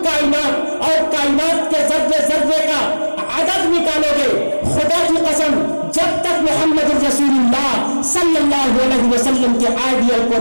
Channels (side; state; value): both; inverted; correlation -1.00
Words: कायनात और कायनात के जर्रे जर्रे का अदद निकालोगे, खुदा की कसम जब तक मोहम्मद रसूलुल्लाह सल्लल्लाहु अलैहि वसल्लम के आइडियल को